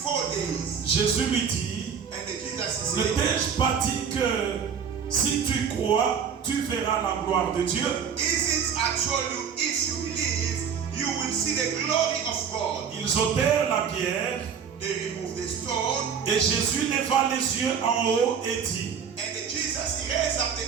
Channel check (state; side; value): quieter; left; 7.1 dB